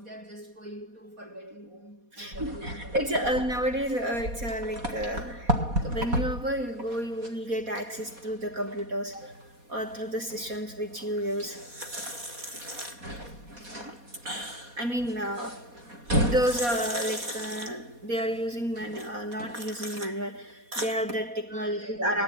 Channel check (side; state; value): left; late; 4.2 ms